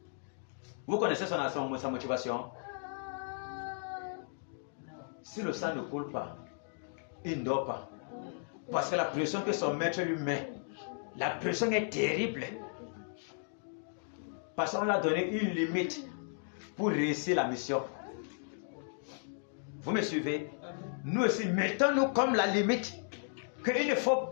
Vous connaissez sa motivation? Si le sang ne coule pas, il ne dort pas. Parce que la pression que son maître lui met, la pression est terrible. Parce qu'on l'a donné une limite pour réussir la mission. Vous me suivez? Nous aussi, mettons-nous comme la limite qu'il ne faut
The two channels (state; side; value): silent; right; digital silence